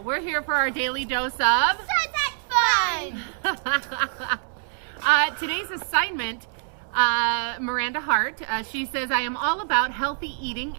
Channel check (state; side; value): silent; left; 62 dB below the other